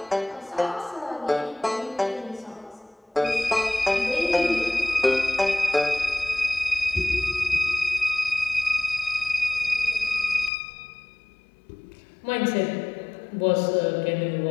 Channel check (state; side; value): drops out; right; at 10.5 s